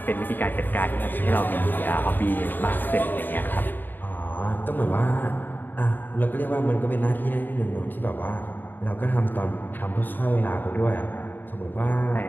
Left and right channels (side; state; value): right; late; 0.091 ms